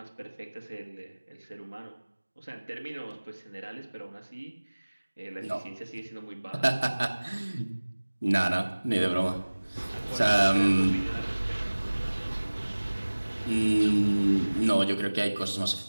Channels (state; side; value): inverted; both; correlation -1.00